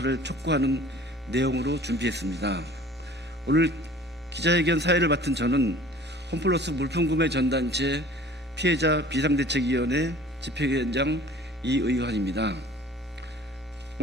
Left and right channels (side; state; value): both; normal; correlation 0.47